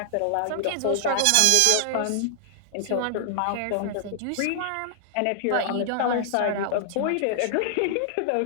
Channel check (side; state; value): both; different; correlation 0.00